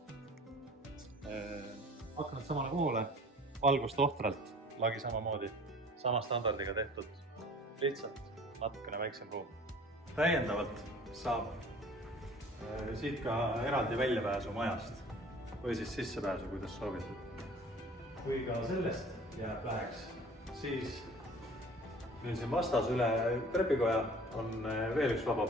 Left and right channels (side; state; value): both; normal; correlation 0.47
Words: Aknad samale poole, valgust ohtralt, lagi samamoodi, sama standardiga tehtud, lihtsalt natukene väiksem ruum. Täiendavalt saab siit ka eraldi väljapääsu majast või siis sissepääsu, kuidas soovitud. Kui ka sellest jääb läheks, siis meil siin vastas üle trepikoja on veel üks vaba